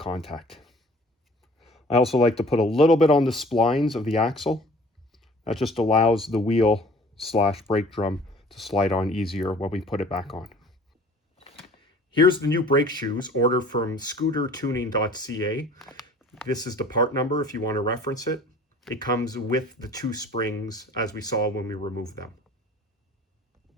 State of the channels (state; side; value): normal; both; correlation 0.49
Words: I also like to put a little bit on the splines of the axle. That just allows the wheel / brake drum to slide on easier when we put it back on. Here's the new brake shoes, ordered from scootertuning.ca. This is the part number if you want to reference it. It comes with the 2 springs as we saw when we removed them.